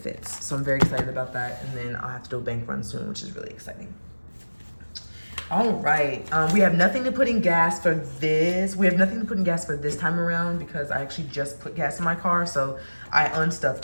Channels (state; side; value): inverted; both; correlation -1.00